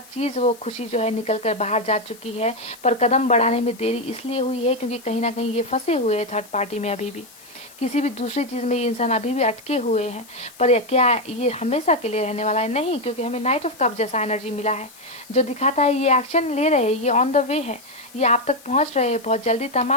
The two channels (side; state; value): left; noise; hiss, 22 dB below the sound